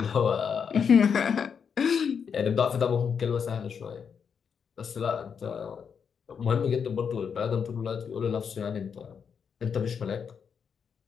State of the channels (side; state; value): right; quieter; 6.8 dB